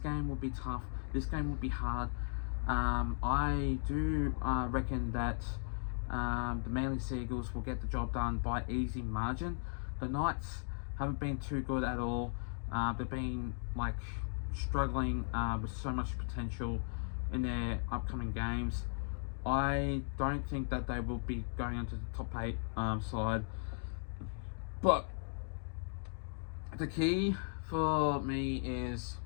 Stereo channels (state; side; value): silent; right; digital silence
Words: will be tough. This game will be hard. I do reckon that the Manly Seagulls will get the job done by easy margin. The Knights haven't been too good at all. They've been struggling with so much potential in their upcoming games. I don't think that they will be going into the top 8 side. But the key for me is,